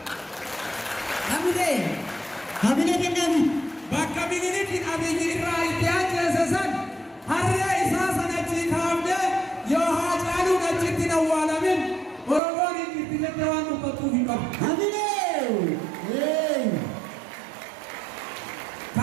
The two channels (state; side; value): drops out; left; at 12.4 s